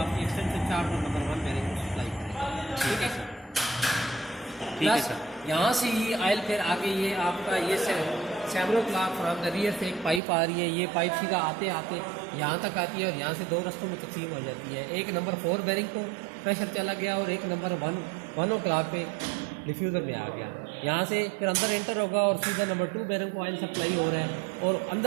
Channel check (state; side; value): drops out; left; at 10.2 s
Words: एक्सटेंशन चार्ट और नंबर 1 बैरिंग को सप्लाई करेगा, ठीक है सर। प्लस यहाँ से ही ऑयल फिर आगे ये आपका ये Severo clock from the rear से एक पाइप आ रही है, ये पाइप सीधा आते आते यहाँ तक आती है और यहाँ से 2 रास्तों में तकसीम हो जाती है। एक नंबर 4 बैरिंग को प्रेशर चला गया और एक नंबर 1 o'clock पे डिफ्यूज़र में आ गया। यहाँ से फिर अंदर एंटर होगा और सीधा नंबर 2 बैरिंग को ऑयल सप्लाई हो रहा है और